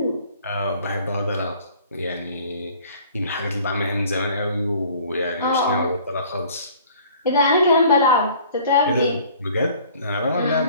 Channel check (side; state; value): both; inverted; correlation -0.52